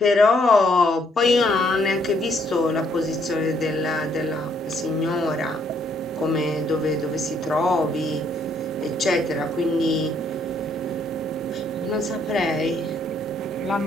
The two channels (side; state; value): both; normal; correlation 0.69